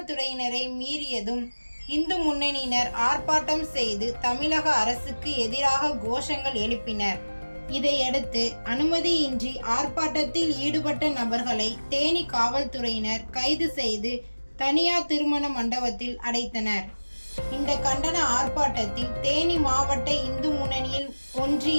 மீறியதும் இந்து முன்னணியினர் ஆர்ப்பாட்டம் செய்து தமிழக அரசுக்கு எதிராக கோஷங்கள் எழுப்பினர். இதையடுத்து அனுமதியின்றி ஆர்ப்பாட்டத்தில் ஈடுபட்ட நபர்களை தேனி காவல்துறையினர் கைது செய்து தனியார் திருமண மண்டபத்தில் அடைத்தனர். இந்த கண்டன ஆர்ப்பாட்டத்தில் தேனி மாவட்ட இந்து முன்னணியில்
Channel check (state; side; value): inverted; both; correlation -1.00